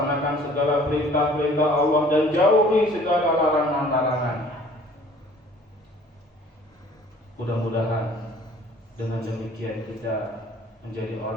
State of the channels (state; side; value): normal; both; correlation 0.52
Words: segala perintah-perintah Allah dan jauhi segala larangan-larangannya. Mudah-mudahan dengan demikian kita menjadi